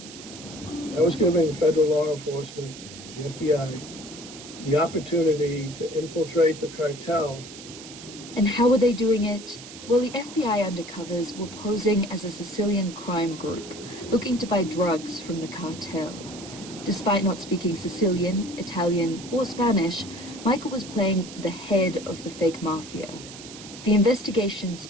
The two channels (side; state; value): right; noise; hiss, 15 dB below the sound